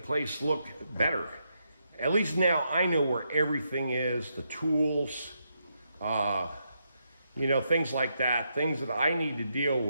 look better. At least now I know where everything is, the tools, things like that, things that I need to deal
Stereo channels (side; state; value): both; inverted; correlation -0.81